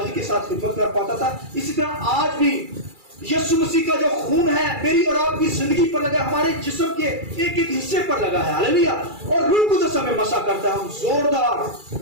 کے ساتھ خدمت کر پاتا تھا. اسی طرح آج بھی یسوع مسیح کا جو خون ہے میری اور آپ کی زندگی پر لگا، ہمارے جسم کے ایک ایک حصے پر لگا ہے. ہاللیلویہ. اور روح القدس ہمیں مسح کرتا ہے، ہم زوردار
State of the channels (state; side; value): late; left; 2.3 ms